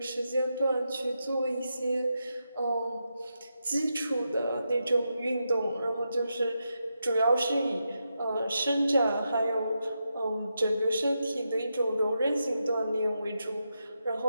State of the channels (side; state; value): both; inverted; correlation -0.86